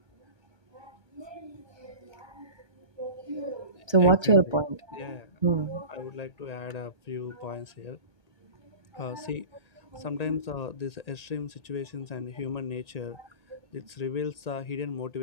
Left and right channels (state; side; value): late; right; 1.8 ms